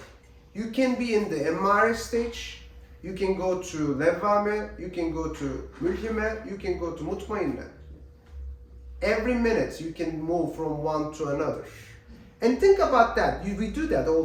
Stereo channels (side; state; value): both; identical; correlation 1.00